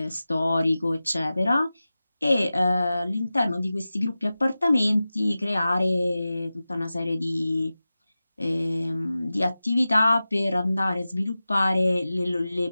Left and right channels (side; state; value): both; inverted; correlation -0.95